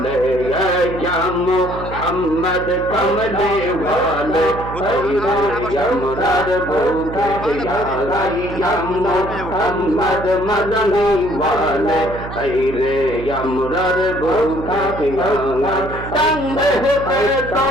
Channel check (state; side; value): noise; right; hum, 10 dB below the sound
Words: মোহাম্মদ কমলে ওয়ালে আমরার বুকে মোহাম্মদ মদনী ওয়ালে রে আমরার বুকে তঙ্গে তো